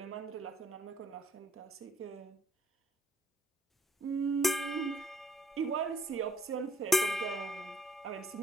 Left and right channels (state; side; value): normal; both; correlation 0.64